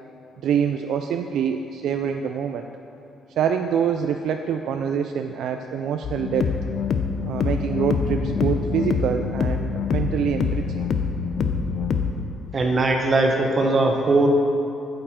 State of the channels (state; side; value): normal; both; correlation 0.65